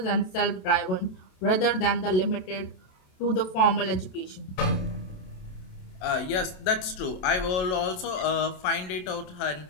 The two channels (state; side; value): late; right; 27 ms